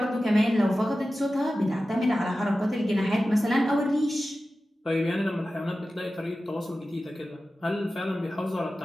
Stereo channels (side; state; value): both; normal; correlation 0.94